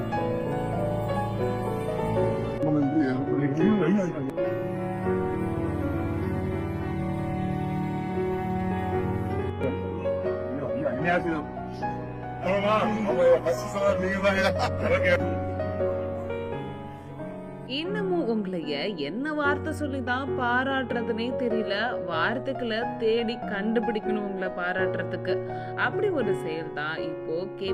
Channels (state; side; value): identical; both; correlation 1.00